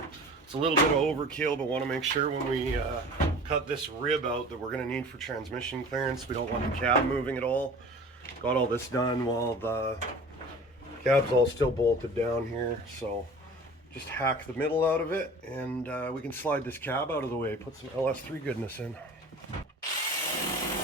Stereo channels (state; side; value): normal; both; correlation 0.41